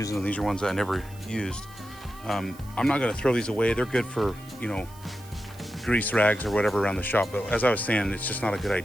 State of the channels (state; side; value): noise; right; hiss, 22 dB below the sound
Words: and these are ones I never used. I'm not going to throw these away. They're good for, you know, grease rags or whatever around the shop. But as I was saying, it's just not a good